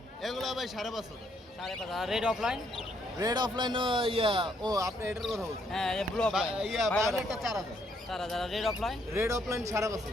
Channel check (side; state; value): both; normal; correlation 0.71